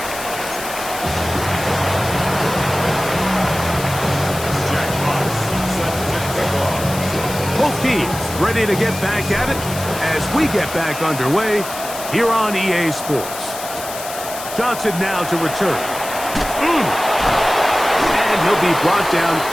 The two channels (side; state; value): left; noise; hiss, 10 dB below the sound